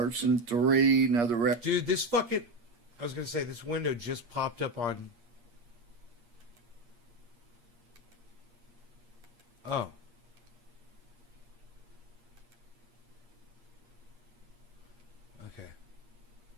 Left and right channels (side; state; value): left; late; 8.5 ms